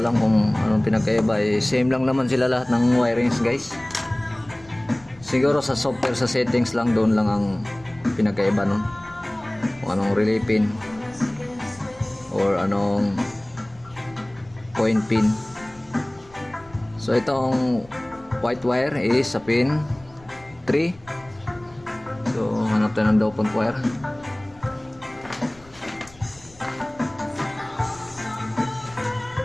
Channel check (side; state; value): left; noise; rumble, 25 dB below the sound